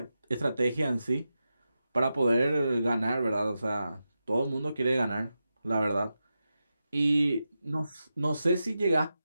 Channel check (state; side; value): inverted; both; correlation -0.90